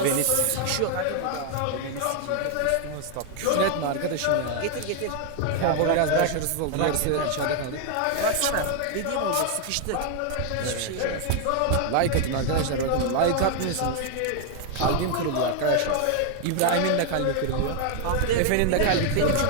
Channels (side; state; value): both; different; correlation 0.00